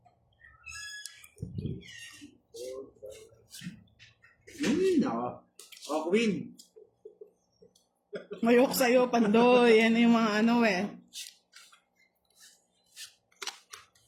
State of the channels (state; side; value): identical; both; correlation 1.00